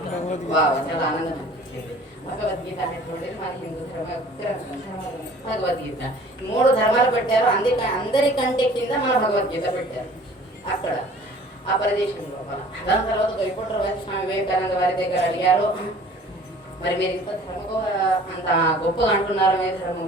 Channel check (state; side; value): normal; both; correlation 0.49